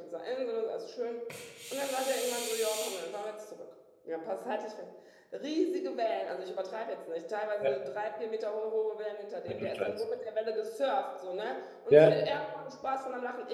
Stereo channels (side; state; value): both; identical; correlation 1.00